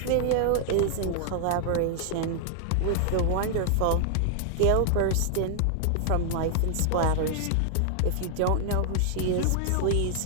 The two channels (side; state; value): both; different; correlation 0.00